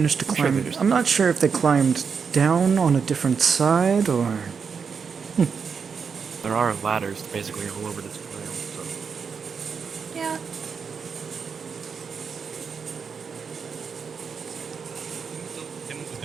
to I'm sure climb. they just- I'm not sure if they climbed down on a different side or. There are ladders basically all over this trail. So. Yeah.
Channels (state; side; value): quieter; left; 6.0 dB